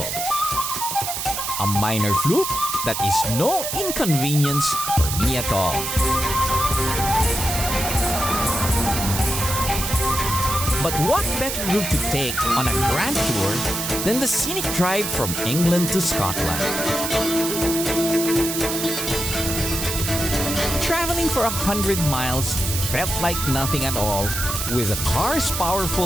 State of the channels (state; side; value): noise; right; hiss, 3 dB below the sound